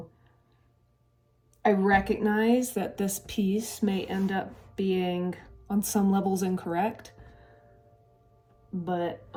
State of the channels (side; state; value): both; identical; correlation 1.00